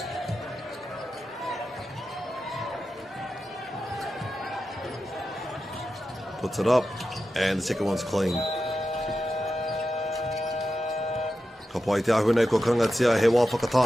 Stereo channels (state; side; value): normal; both; correlation 0.91